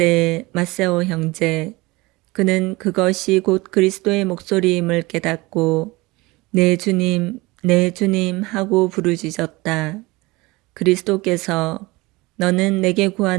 마세오 형제. 그는 그것이 곧 그리스도의 목소리임을 깨닫고 내 주님, 내 주님 하고 부르짖었다. 그리스도께서 너는 내게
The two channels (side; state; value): left; quieter; 22.3 dB